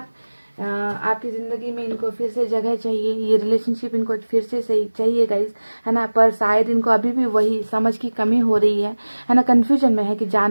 आपकी ज़िंदगी में इनको फिर से जगह चाहिए, ये रिलेशनशिप इनको फिर से सही चाहिए गाइस, है ना। पर शायद इनको अभी भी वही समझ की कमी हो रही है ना। कन्फ्यूजन में है कि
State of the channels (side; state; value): both; inverted; correlation -1.00